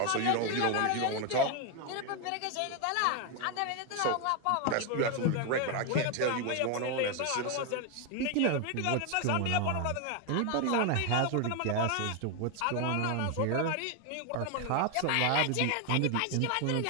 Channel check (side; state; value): both; different; correlation 0.01